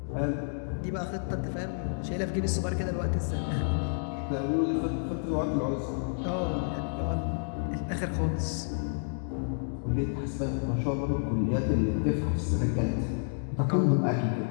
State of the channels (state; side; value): silent; right; digital silence